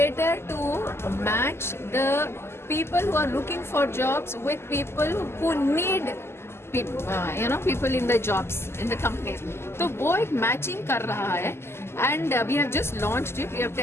to match the people who are looking for jobs with people who need people in the jobs in the companies. तो वो एक matching कर रहा है, and we have just launched it, we have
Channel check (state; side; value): late; right; 0.12 ms